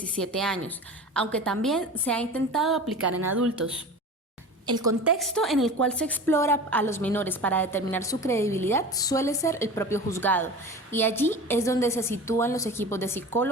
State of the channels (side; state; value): both; normal; correlation 0.35